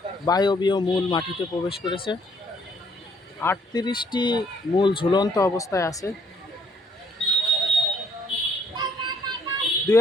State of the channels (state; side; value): normal; both; correlation 0.66